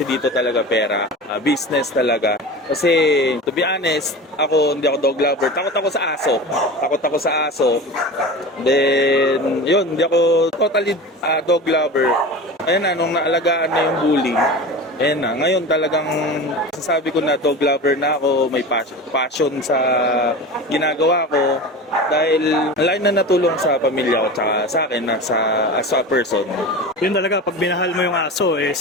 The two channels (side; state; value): both; normal; correlation 0.31